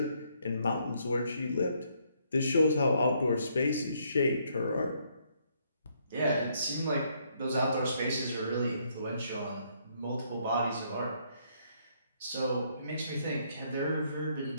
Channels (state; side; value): inverted; both; correlation -0.70